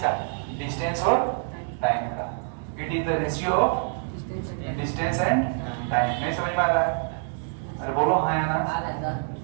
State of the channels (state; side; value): silent; left; 61 dB below the other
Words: डिस्टेंस और टाइम का। It is the ratio of distance and time. नहीं समझ में आ रहा है? अरे बोलो हाँ या ना?